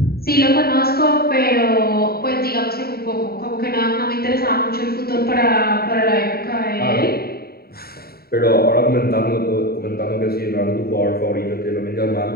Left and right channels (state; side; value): late; right; 0.45 ms